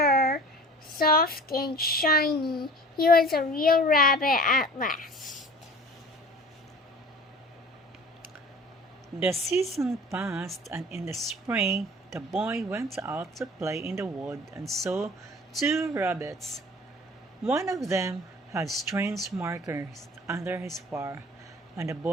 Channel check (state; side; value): normal; both; correlation 0.44